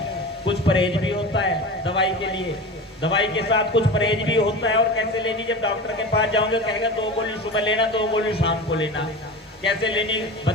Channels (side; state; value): both; normal; correlation 0.31